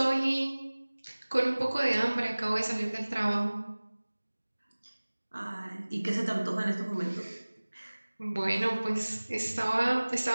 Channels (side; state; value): both; inverted; correlation -1.00